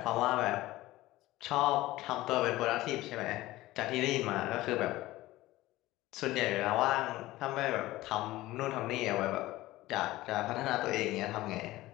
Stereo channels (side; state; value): right; quieter; 17.5 dB